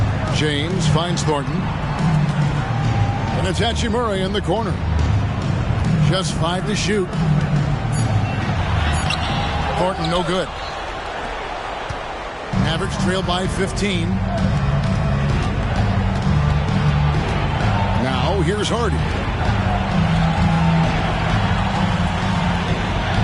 James finds Thornton. And it's Hachimura in the corner. Just 5 to shoot. Thornton no good. Mavericks trail by 15. Now here's Hardy.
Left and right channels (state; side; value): identical; both; correlation 1.00